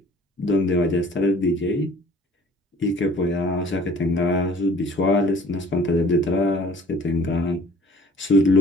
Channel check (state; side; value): normal; both; correlation 0.51